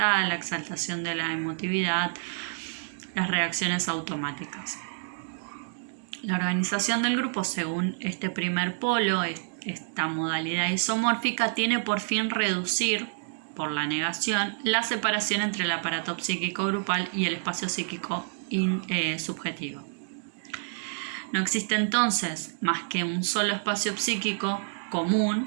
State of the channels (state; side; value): silent; left; digital silence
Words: la exaltación de la emotividad, las reacciones automáticas. La organización del grupo, según este primer polo, esta modalidad isomórfica, tiene por fin reducir, por la negación, la separación entre el aparato psíquico grupal y el espacio psíquico subjetivo. No existe entonces más que un solo espacio psíquico